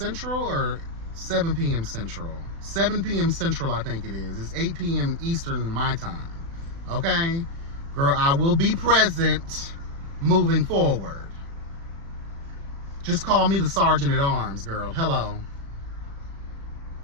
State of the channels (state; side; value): late; left; 36 ms